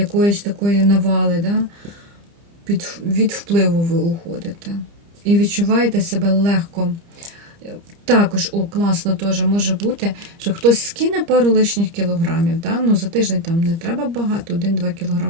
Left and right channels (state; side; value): late; left; 30 ms